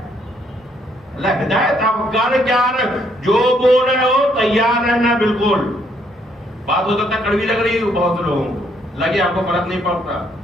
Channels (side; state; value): both; normal; correlation 0.70